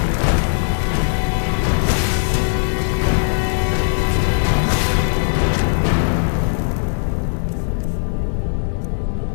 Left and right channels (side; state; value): right; silent; digital silence